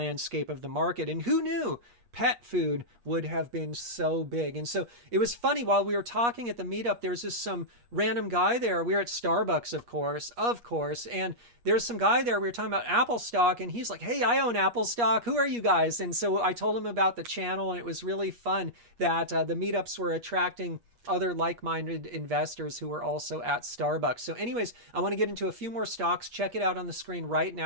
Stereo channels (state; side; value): late; left; 8.4 ms